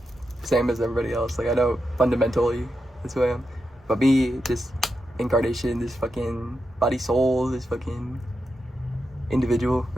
same as everybody else. Like, I know fundamentally that's who I am. But me, this incarnation, this fucking body soul, this fucking individual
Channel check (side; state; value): both; normal; correlation 0.87